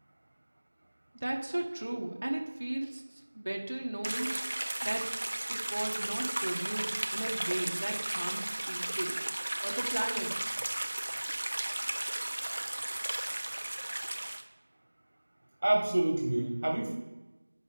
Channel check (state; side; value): inverted; both; correlation -1.00